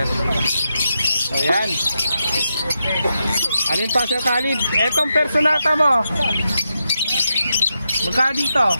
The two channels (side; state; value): both; inverted; correlation -0.86